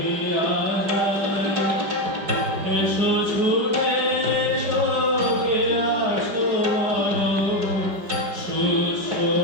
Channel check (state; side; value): late; left; 5.1 ms